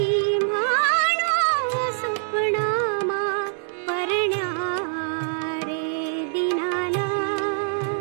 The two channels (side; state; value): left; silent; digital silence